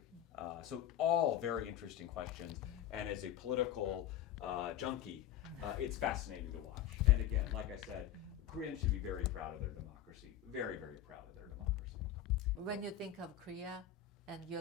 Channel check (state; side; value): quieter; right; 11.1 dB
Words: So all very interesting questions. And as a political junkie, it's fascinating to watch. And again, like I said, Koreans should be very proud of their democracy. Very, very proud of their democracy. When you think of Korea and